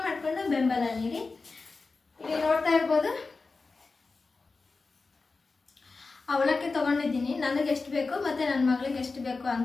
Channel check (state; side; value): quieter; right; 4.0 dB